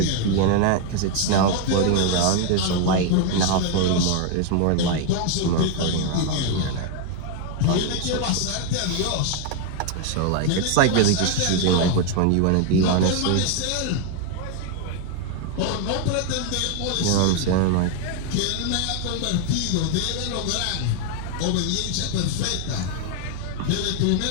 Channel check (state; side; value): different; both; correlation 0.01